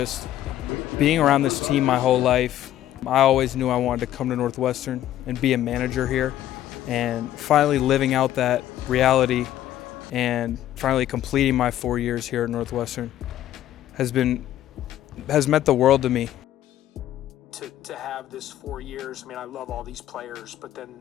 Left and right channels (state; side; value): quieter; right; 12.6 dB